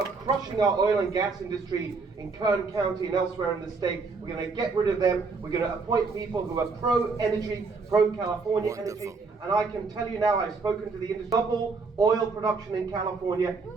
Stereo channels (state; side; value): quieter; left; 4.4 dB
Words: crushing our oil and gas industry in Kern County and elsewhere in the state. We're going to get rid of them. We're going to appoint people who are pro-energy, pro-California energy. And I can tell you now, I've spoken to the industry, double oil production in California